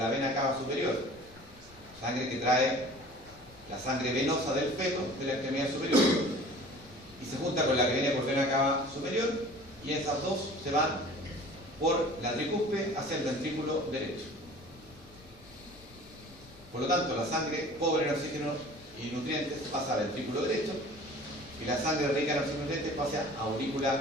vena cava superior, sangre que trae la sangre venosa del feto de la extremidad superior, y se junta con la que viene por vena cava superior, y esas dos se van por la tricúspide hacia el ventrículo derecho. Por lo tanto, la sangre pobre en oxígeno y nutrientes pasa al ventrículo derecho, y la sangre rica en oxígeno y nutrientes pasa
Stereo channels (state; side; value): noise; left; rumble, 23 dB below the sound